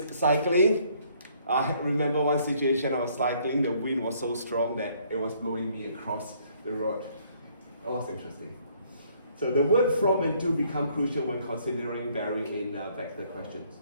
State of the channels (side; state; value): both; inverted; correlation -0.64